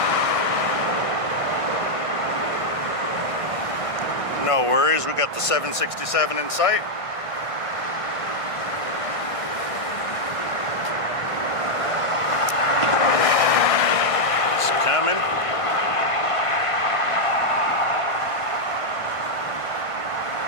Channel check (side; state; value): right; late; 1.5 ms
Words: No worries, we got the 767 in sight. It's coming.